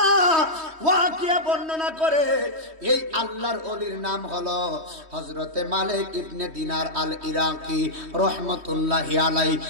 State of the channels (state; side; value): late; left; 3.2 ms